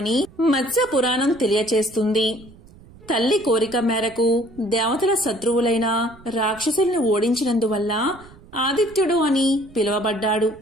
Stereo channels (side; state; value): right; noise; rumble, 23 dB below the sound